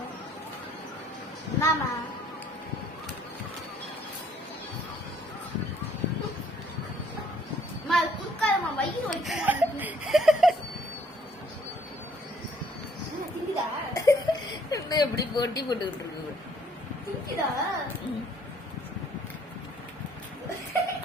என்னம்மா குடுக்காதம்மா, வயிறு வலிக்குது. எப்படி போட்டி போட்டுக்கிட்டு இருக்கு.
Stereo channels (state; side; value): normal; both; correlation 0.62